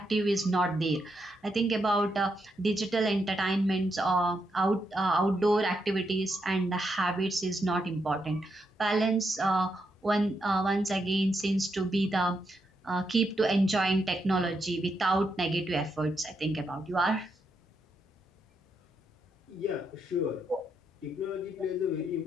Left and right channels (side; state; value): both; normal; correlation 0.81